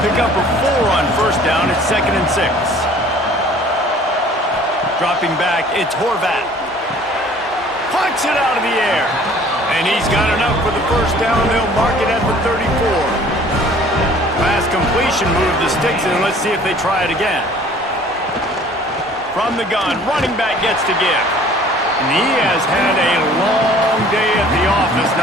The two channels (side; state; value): both; normal; correlation 0.52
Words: pickup of 4 on 1st down. It's 2nd and 6. Dropping back, it's Horvat. Punts it out of the air. And he's got enough for the 1st down. They'll mark it at the 34. Last completion moved the sticks in. Let's see if they try it again. From the gun, running back gets to give. And he has had a long day at the office,